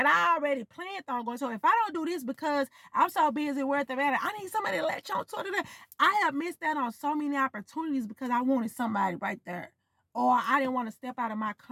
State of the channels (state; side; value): identical; both; correlation 1.00